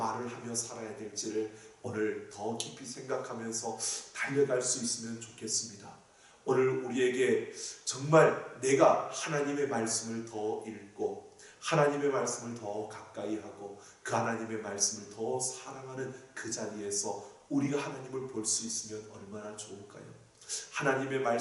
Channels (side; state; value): both; identical; correlation 1.00